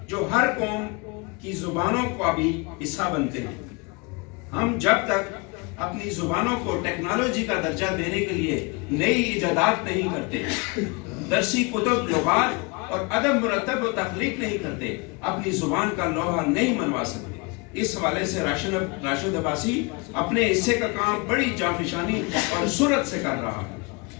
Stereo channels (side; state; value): right; quieter; 28.9 dB